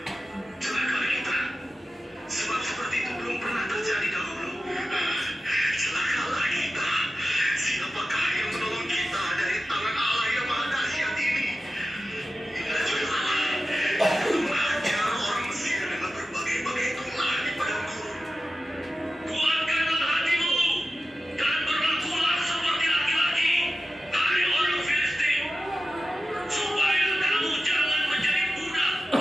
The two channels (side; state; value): both; normal; correlation 0.93